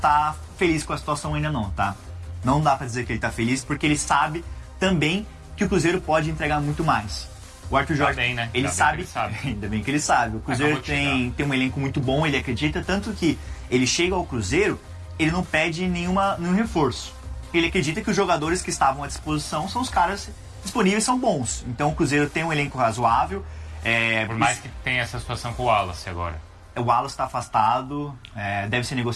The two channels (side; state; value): both; identical; correlation 1.00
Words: feliz com a situação ainda não, tá? Não dá pra dizer que ele tá feliz, porque ele sabe também que o Cruzeiro pode entregar muito mais. O Arthur Jorge, bem, né? ele sabe, ainda bem que ele sabe. O Cruzeiro tem um elenco muito bom, ele acredita, tanto que ele chega ao Cruzeiro, ele não pede nenhum reforço. Ele acredita que os jogadores que estavam à disposição são os caras disponíveis, são bons. Então o Cruzeiro tem um elenco razoável. Por mais que tenha essa situação com o Wallace agora. O Wallace está afastado, deve ser